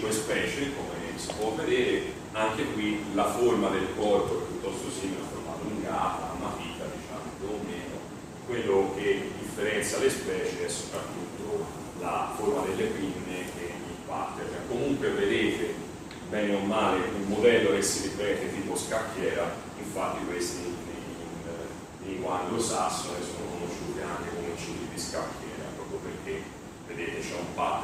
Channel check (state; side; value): identical; both; correlation 1.00